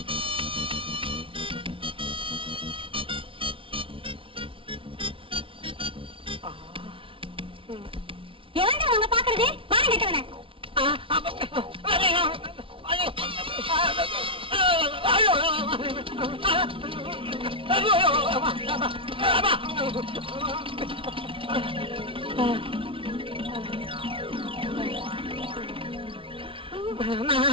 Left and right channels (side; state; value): left; late; 0.25 ms